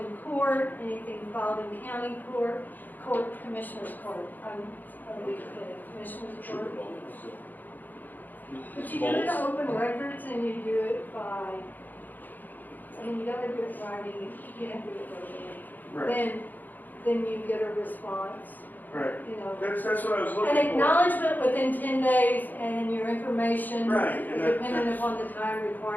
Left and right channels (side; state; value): right; late; 0.086 ms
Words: court, anything filed in county court, commissioner's court. Commissioner's court. But you do it to open records and you do it by, I mean, you gotta do it writing, you can't do it verbally. Right, Then you get a response, right. you know. That's what I was looking An for. acknowledgement within 10 days and your information, Right, and that- depending upon the time